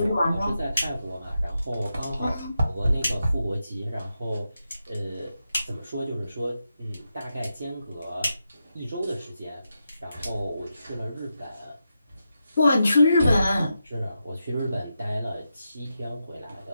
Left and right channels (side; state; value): both; inverted; correlation -0.87